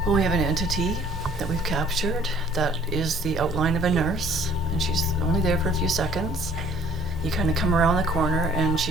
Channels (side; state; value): both; normal; correlation 0.56